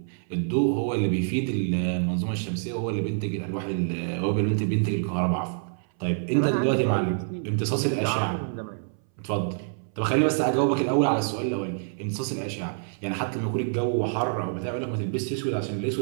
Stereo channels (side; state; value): left; silent; 60 dB below the other